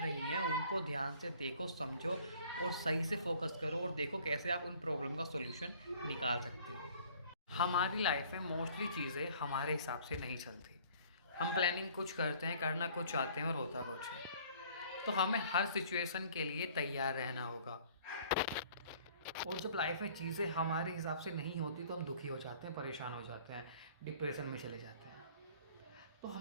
हैं उनको ध्यान से देखो, समझो और सही से फोकस करो और देखो कैसे आप उन प्रॉब्लम का सॉल्यूशन निकाल सकते हो। हमारी लाइफ में मोस्टली चीज़ें हमारे हिसाब से नहीं चलती। हम प्लानिंग कुछ करते हैं, करना कुछ चाहते हैं और होता कुछ है। तो हमें हर सिचुएशन के लिए तैयार रहना होगा। और जब लाइफ में चीज़ें हमारे हिसाब से नहीं होती तो हम दुखी हो जाते हैं, परेशान हो जाते हैं, डिप्रेशन में चले जाते हैं। तो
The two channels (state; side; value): inverted; both; correlation -0.54